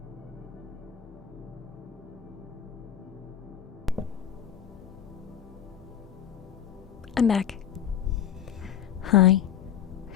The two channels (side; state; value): right; quieter; 9.5 dB